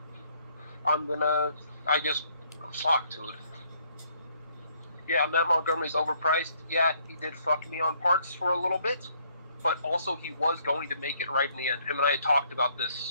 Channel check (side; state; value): both; inverted; correlation -0.66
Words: Fuck, dude. Yeah, Matt Montgomery's overpriced. Yeah, he did fuck me on parts for a little bit. but also he was going to make it right in the end. Him and I had talked about